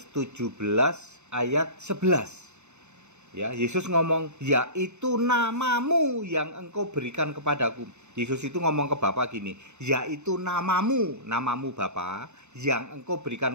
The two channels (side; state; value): left; late; 0.83 ms